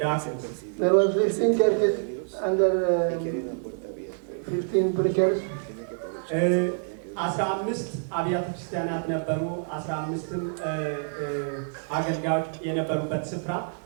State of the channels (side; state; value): left; silent; 60 dB below the other